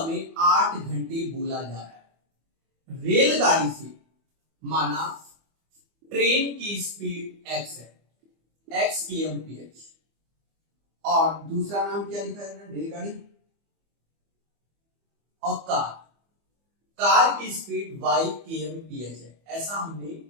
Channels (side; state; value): left; late; 24 ms